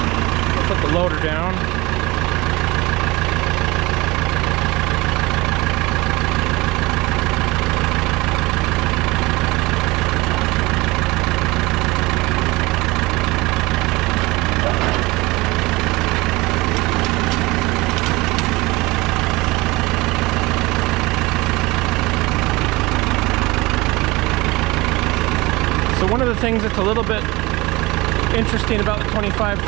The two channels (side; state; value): left; quieter; 22.0 dB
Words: Put the loader down. One of the things that's a little bit interesting about the